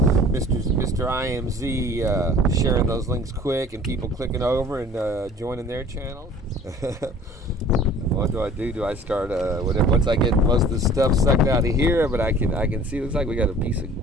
Mr. IMZ sharing those links quick, and people clicking over and joining their channel. What do? Do I start once I get most of the stuff sucked out of here? But I can see, it looks like we got a piece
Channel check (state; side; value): normal; both; correlation 0.48